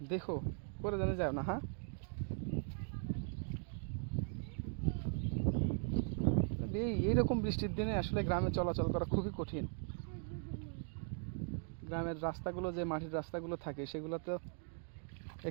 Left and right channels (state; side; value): silent; left; 51 dB below the other